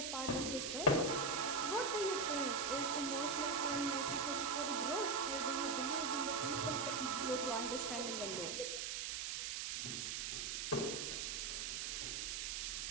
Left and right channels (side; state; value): right; noise; hiss, 2 dB below the sound